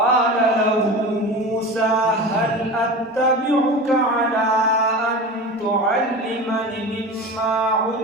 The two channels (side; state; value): both; normal; correlation 0.31